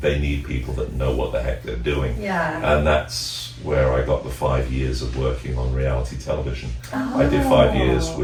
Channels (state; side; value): identical; both; correlation 1.00